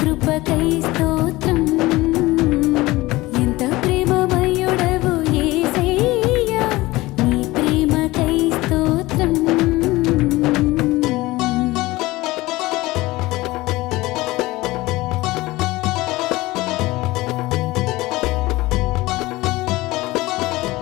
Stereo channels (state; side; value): quieter; right; 19.6 dB